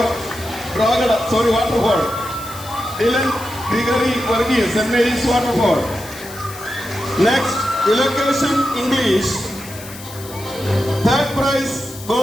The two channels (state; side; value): noise; left; hiss, 15 dB below the sound